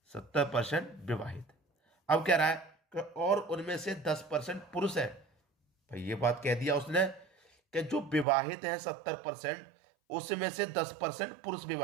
70% विवाहित। अब कह रहा है कि और उनमें से 10% पुरुष है। भाई ये बात कह दिया उसने कि जो विवाहित है 70%, उसमें से 10% पुरुष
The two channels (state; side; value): drops out; left; at 8.2 s